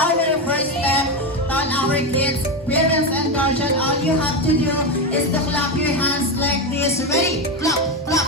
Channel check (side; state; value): both; normal; correlation 0.13